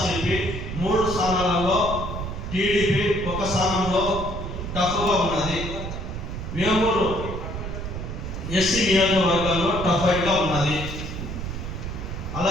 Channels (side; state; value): right; noise; rumble, 6 dB below the sound